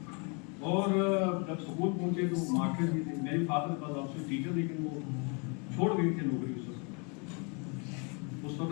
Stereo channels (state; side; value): quieter; right; 34.5 dB